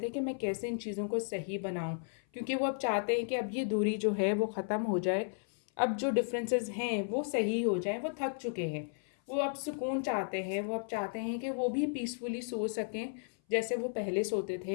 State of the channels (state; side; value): silent; right; 55 dB below the other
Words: कि मैं कैसे इन चीज़ों को सही बनाऊं, क्योंकि वो अब चाहते हैं कि अब ये दूरी जो है वो ख़त्म हो जाए, अब जो डिफरेंसेस हैं वो सही हो जाएं। वो थक चुके हैं, वो अब सुकून चाहते हैं, वो अब चाहते हैं कि वो भी पीसफुली सो सकें, जैसे वो पहले सोते